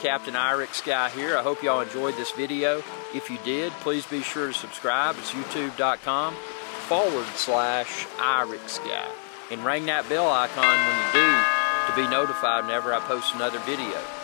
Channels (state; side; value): silent; right; 61 dB below the other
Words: IRIX guy here. I hope y'all enjoyed this video. If you did, please be sure to subscribe. It's youtube.com/IRIX guy. And ring that bell icon when you do to be notified whenever I post another video.